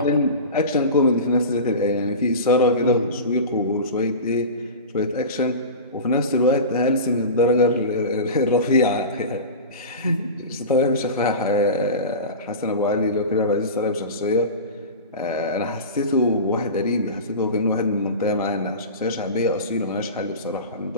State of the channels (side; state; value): both; inverted; correlation -0.30